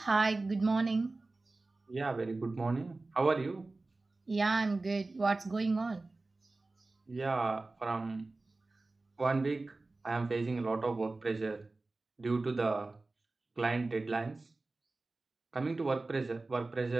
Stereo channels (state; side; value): quieter; left; 3.3 dB